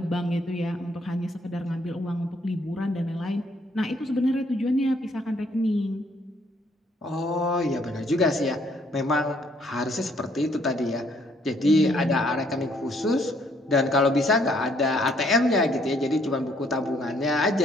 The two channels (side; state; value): both; normal; correlation 0.66